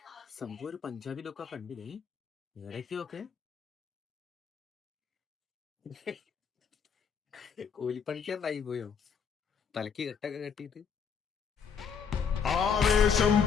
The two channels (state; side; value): quieter; right; 6.6 dB